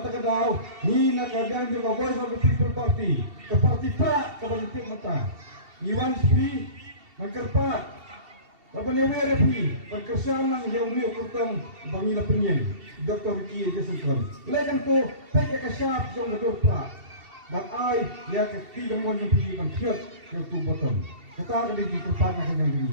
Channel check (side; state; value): left; late; 2.7 ms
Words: kadau ni nakagyan juga Voice of the People Party ke parti pra ke parti mata Iwan Spi magkarpa Laban repi perkesan ng yaumi ukurtang bangila penyen Dr. Ricky Jason lekan to peke kasyap jong gadorpa but I ya ketiga mo yung pili pang cute yung two bottom kata ka di kerpat na kanyang